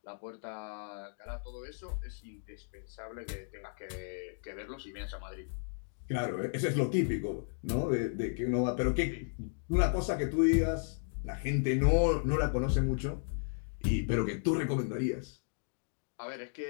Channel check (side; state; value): right; silent; digital silence